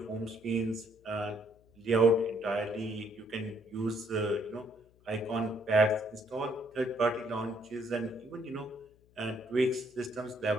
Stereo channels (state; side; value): noise; left; hum, 30 dB below the sound